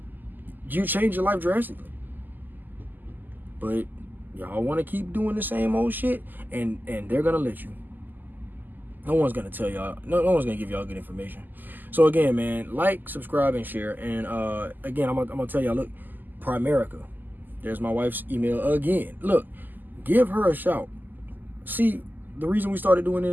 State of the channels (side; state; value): left; late; 0.087 ms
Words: you change your life drastically. But y'all want to keep doing the same old shit, and they're gonna let you. No one's gonna tell y'all. No one's gonna give y'all good information. So again, man, like, subscribe, and share. And again, I'm gonna tell y'all. Look, Primerica. There's my wife's email again. Look, give her a shout. See, the reason we started doing